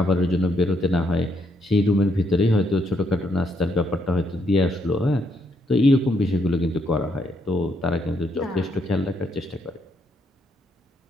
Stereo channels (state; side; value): normal; both; correlation 0.75